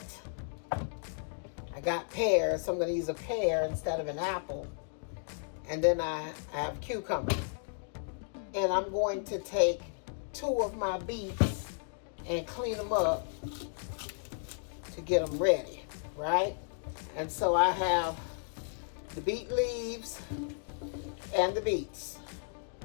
I got pears, so I'm going to use a pear instead of an apple. And then I have cucumbers. And I'm going to take 2 of my beets and clean them up to get them ready, right? And so I have the beet leaves and the beets.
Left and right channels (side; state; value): right; silent; digital silence